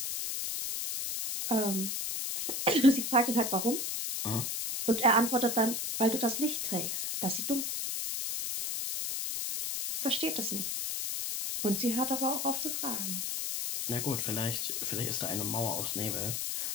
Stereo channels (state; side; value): noise; left; hiss, 2 dB below the sound